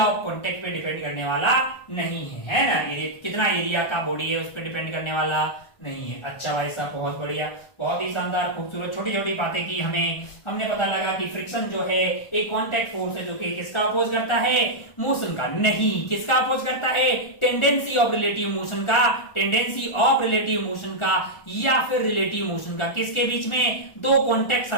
ऑफ कॉन्टैक्ट पे डिपेंड करने वाला नहीं है ना, कितना एरिया का बॉडी है उस पर डिपेंड करने वाला नहीं है। अच्छा भाई साहब, बहुत बढ़िया, बहुत ही शानदार, खूबसूरत, छोटी छोटी बातें की हमने पता लगा कि फ्रिक्शन जो है एक कांटेक्ट फोर्स है जो कि किसका अपोज करता है, मोशन का। नहीं, किसका अपोज करता है, टेंडेंसी ऑफ रिलेटिव मोशन का, टेंडेंसी ऑफ रिलेटिव मोशन का, या फिर रिलेटिव मोशन का। किसके बीच में, दो कांटेक्ट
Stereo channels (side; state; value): right; late; 1.4 ms